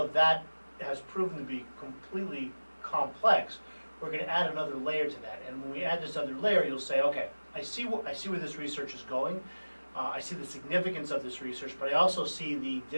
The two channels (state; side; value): inverted; both; correlation -1.00